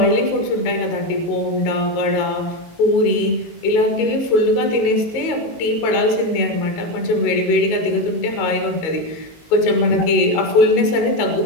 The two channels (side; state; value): right; late; 19 ms